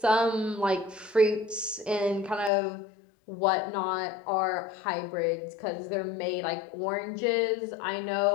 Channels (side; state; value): right; drops out; at 2.5 s